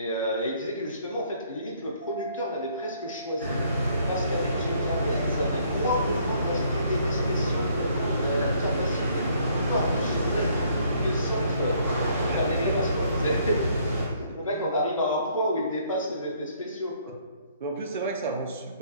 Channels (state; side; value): inverted; both; correlation -0.64